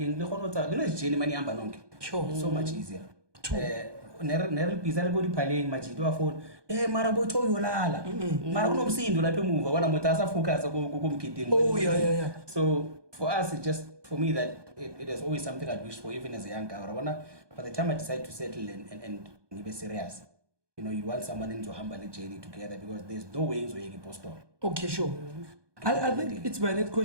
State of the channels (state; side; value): late; left; 1.2 ms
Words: Sure. So much easier. Never pizza go playing majido phone. Mara bocho yolala. Mara no msindo la move. Wana mutasa focus go. Oh yeah. So for us, it's just for me that it is always something I'd wish for, even as a young guy. By the time I decide to settle and be serious, you want someone into humble journey together because there's no ways where you can post on. Okay, sure. I think it's my next